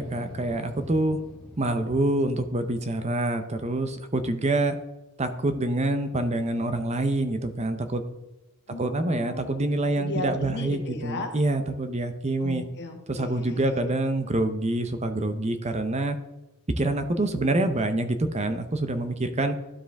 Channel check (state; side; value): normal; both; correlation 0.63